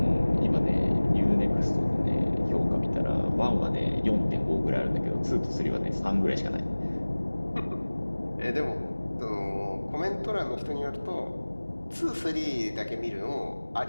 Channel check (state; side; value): inverted; both; correlation -1.00